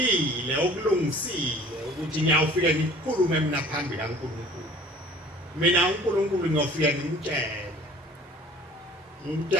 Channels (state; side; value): normal; both; correlation 0.49